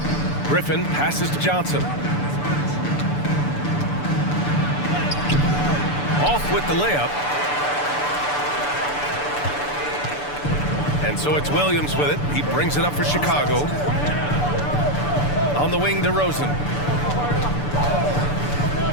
Griffin passes to Johnson. Off with the layup. And so it's Williams with it. He brings it up for Chicago. On the wing, DeRozan.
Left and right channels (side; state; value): right; late; 6.9 ms